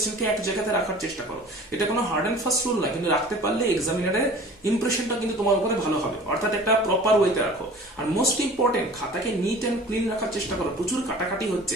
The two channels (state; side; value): normal; both; correlation 0.44